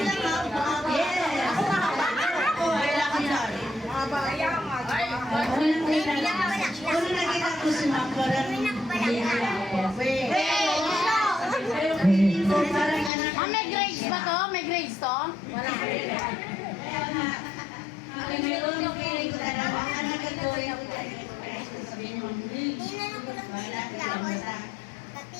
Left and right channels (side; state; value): right; drops out; at 13.1 s